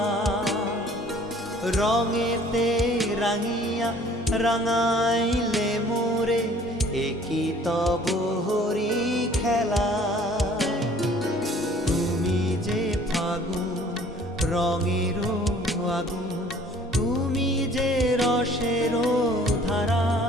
রঙেতে রাঙিয়া রাঙাইলে মোরে একই তব হরি খেলা। তুমি যে ফাগুন রঙেরও আগুন, তুমি যে রসেরও ধারা,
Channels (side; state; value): both; normal; correlation 0.54